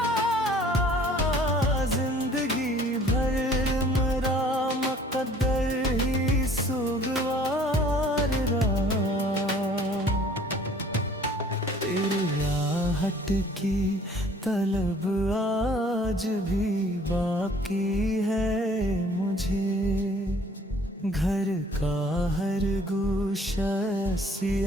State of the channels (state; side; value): normal; both; correlation 0.55